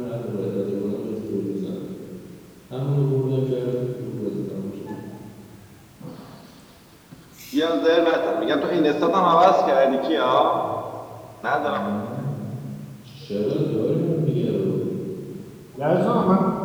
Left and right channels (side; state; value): both; identical; correlation 1.00